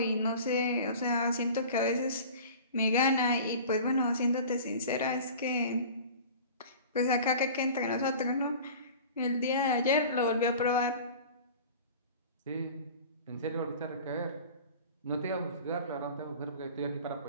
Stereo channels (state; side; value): inverted; both; correlation -0.40